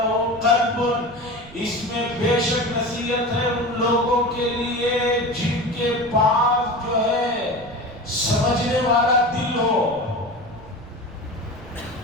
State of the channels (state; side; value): noise; right; rumble, 19 dB below the sound